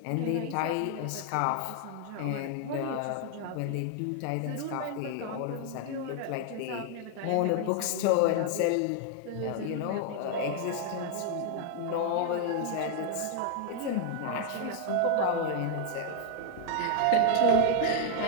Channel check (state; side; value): different; both; correlation 0.00